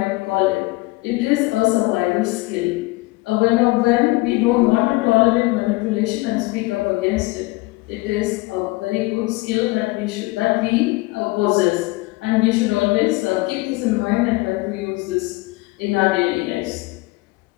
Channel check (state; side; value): quieter; right; 22.3 dB